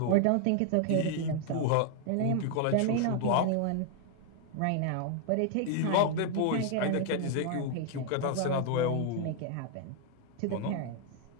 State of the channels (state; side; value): different; both; correlation 0.00